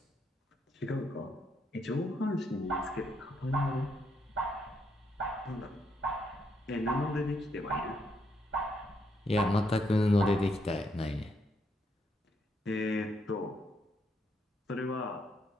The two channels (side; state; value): both; normal; correlation 0.76